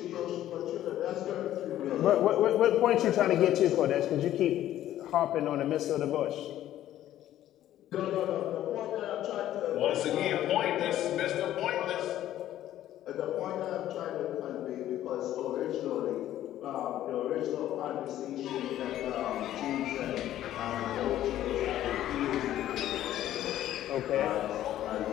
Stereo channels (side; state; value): right; quieter; 12.7 dB